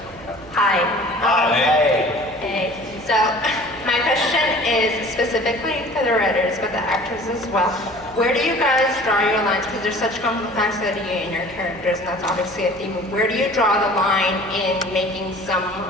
Hi. Hey. Hey. So, my question is specifically for the writers, but the actors as well. Where do you guys draw your lines? Because there's such complexity in your characters, and that's obviously a theme. Where do you draw the line in making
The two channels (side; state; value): right; noise; hum, 22 dB below the sound